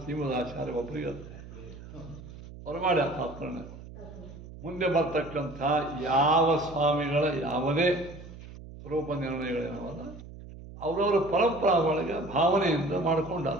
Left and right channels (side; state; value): right; noise; hum, 15 dB below the sound